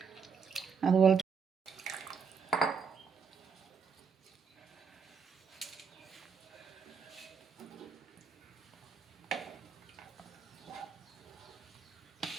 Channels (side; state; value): left; quieter; 5.9 dB